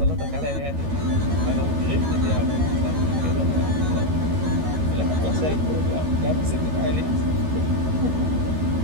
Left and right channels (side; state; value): left; late; 13 ms